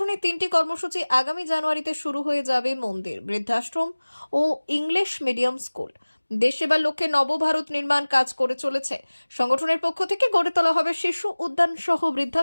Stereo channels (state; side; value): inverted; both; correlation -1.00